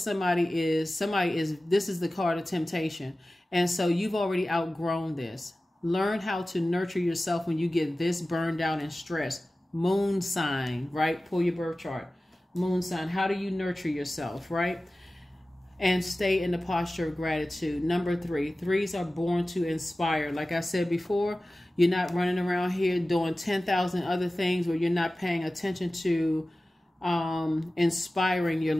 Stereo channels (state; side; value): normal; both; correlation 0.96